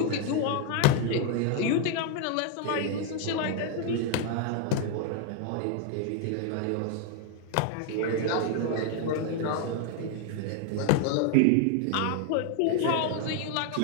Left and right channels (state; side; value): different; both; correlation 0.00